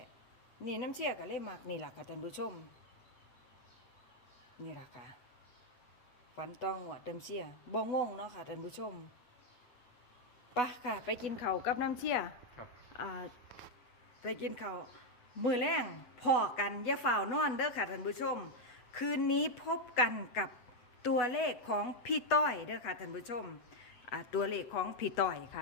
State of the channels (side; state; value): right; late; 8.2 ms